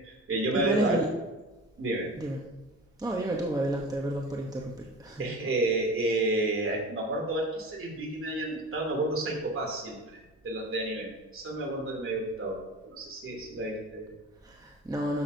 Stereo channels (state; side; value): normal; both; correlation 0.35